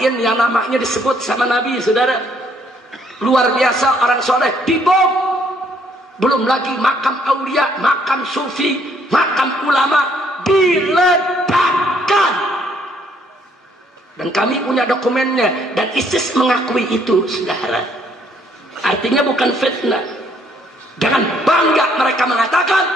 yang namanya disebut sama Nabi, saudara. Luar biasa orang soleh, dibom. Belum lagi makam aulia, makam sufi, makam ulama diledakkan. Dan kami punya dokumennya, dan ISIS mengakui itu, saudara. Artinya bukan fitnah. Dengan bangga mereka mengatakan,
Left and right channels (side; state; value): both; normal; correlation 0.66